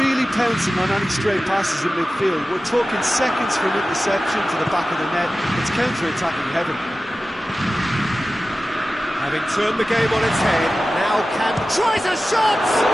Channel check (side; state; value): both; normal; correlation 0.95